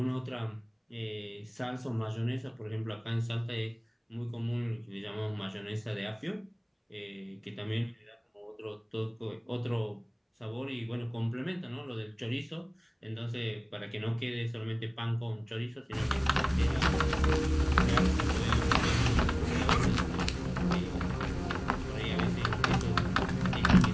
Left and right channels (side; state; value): both; identical; correlation 1.00